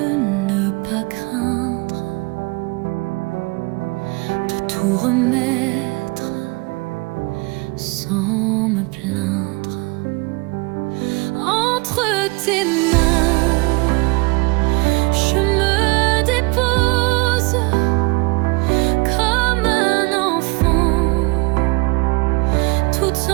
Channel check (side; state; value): left; quieter; 27.0 dB